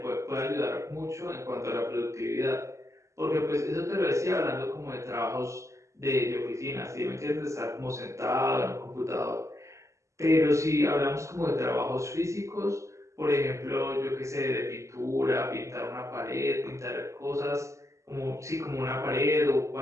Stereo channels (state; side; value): late; left; 0.14 ms